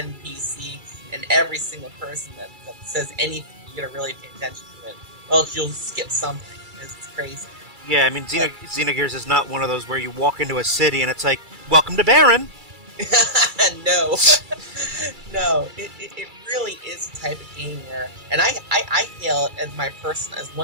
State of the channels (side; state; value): left; late; 2.3 ms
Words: and every single person that says anything. You gotta really pay attention to it, or else you'll skip something. It's crazy. Yeah, I mean, Xenogears is not one of those where you walk into a city and it's like, welcome to Baron. No. No, it really is a type of game where, and I hail it as